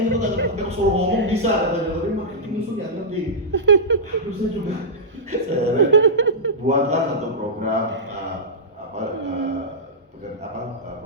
itu nggak ngerti, aku suruh ngomong bisa katanya, tapi marketing itu nggak ngerti. Terus saya juga saya buatlah satu program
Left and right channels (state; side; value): normal; both; correlation -0.12